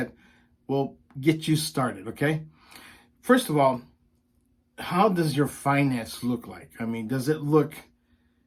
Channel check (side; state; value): both; identical; correlation 1.00